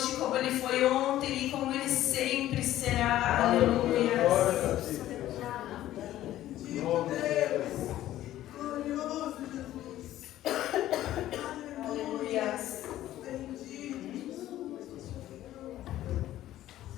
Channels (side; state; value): right; quieter; 13.7 dB